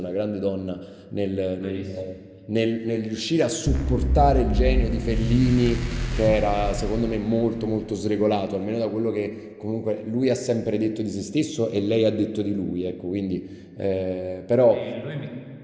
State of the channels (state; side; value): identical; both; correlation 1.00